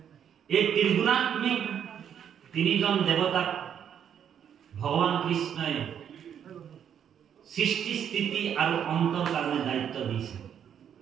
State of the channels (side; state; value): left; quieter; 8.8 dB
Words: এই ত্ৰিগুণাত্মিক তিনিজন দেৱতাক ভগৱান কৃষ্ণই সৃষ্টি স্থিতি আৰু অন্তৰ কাৰণে দায়িত্ব দিছে